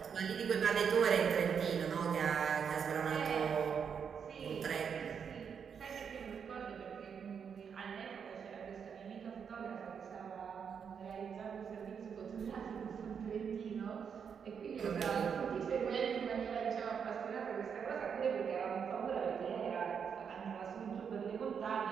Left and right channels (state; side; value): quieter; left; 7.0 dB